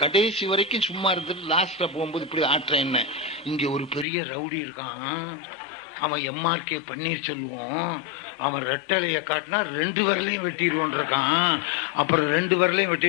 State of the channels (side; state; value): right; drops out; at 4.0 s